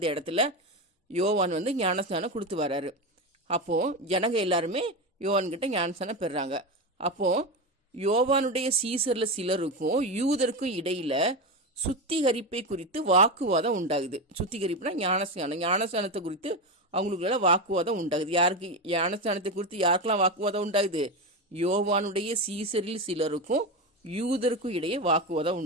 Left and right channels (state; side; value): normal; both; correlation 0.16